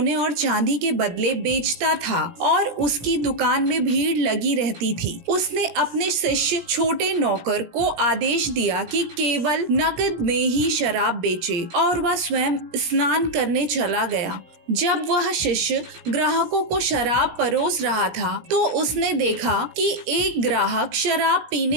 और चांदी के बदले बेचता था और उसकी दुकान में भीड़ लगी रहती थी। उसने अपने शिष्य छोटे नौकर को आदेश दिया कि केवल नकद में ही शराब बेचे और वह स्वयं स्नान करने चला गया। जब वह शिष्य ग्राहकों को शराब परोस रहा था तो उसने देखा कि एक ग्राहक शराब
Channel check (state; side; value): late; left; 17 ms